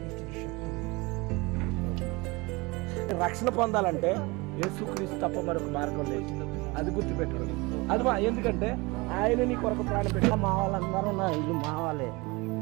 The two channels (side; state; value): left; quieter; 24.8 dB